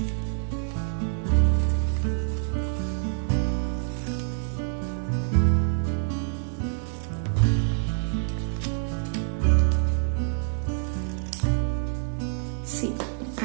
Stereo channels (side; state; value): left; silent; digital silence